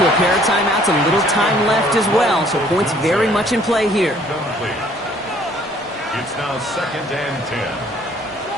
a pair of timeouts, a little time left as well, so points very much in play here. It's now 2nd and 10.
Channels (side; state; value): both; normal; correlation 0.59